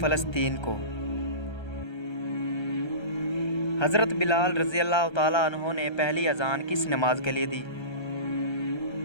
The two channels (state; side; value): late; right; 1.3 ms